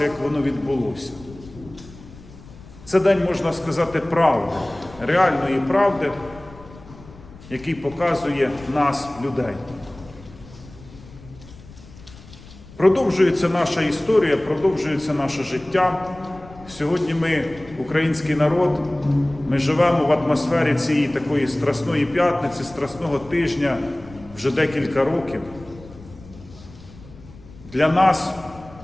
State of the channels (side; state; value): left; noise; rumble, 20 dB below the sound